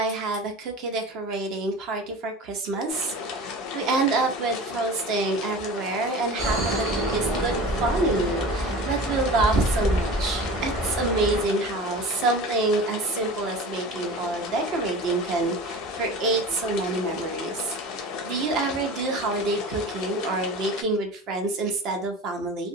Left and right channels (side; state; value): both; normal; correlation 0.35